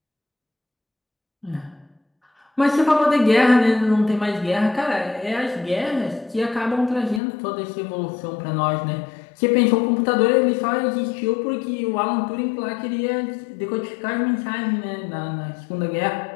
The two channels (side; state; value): right; drops out; at 7.2 s